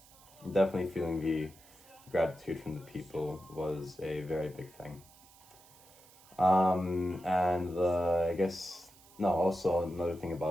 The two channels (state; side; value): noise; right; hiss, 25 dB below the sound